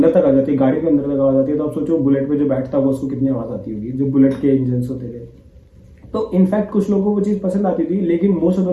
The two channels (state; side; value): identical; both; correlation 1.00